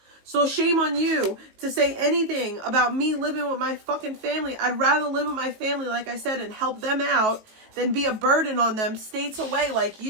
So shame on you to say anything about me living with my fucking family. I'd rather live with my family, like I said, and help them out than be a burden on them states away like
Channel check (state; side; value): late; left; 19 ms